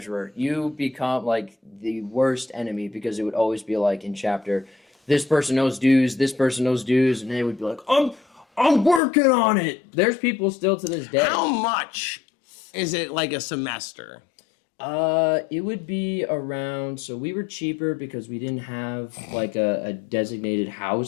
You become like the worst enemy because it would always be like in chapter, this person knows dues, this person knows dues, and they would be like, I'm working on it. There's people still to this day. How much is it like a semester? It would be around. So we were cheaper because we didn't have like a designated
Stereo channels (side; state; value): right; drops out; at 9.0 s